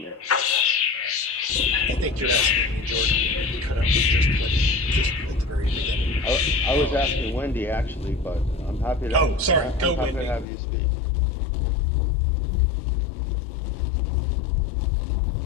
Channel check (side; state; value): right; drops out; at 10.5 s